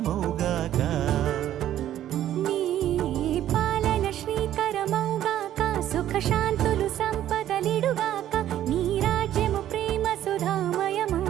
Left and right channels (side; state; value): left; quieter; 12.0 dB